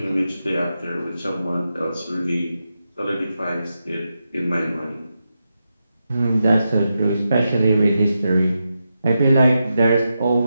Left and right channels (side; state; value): both; inverted; correlation -0.88